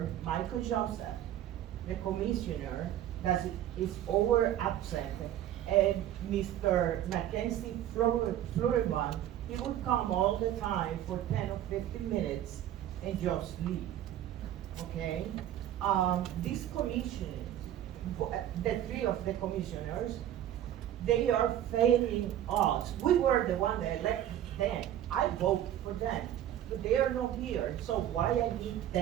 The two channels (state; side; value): quieter; left; 11.8 dB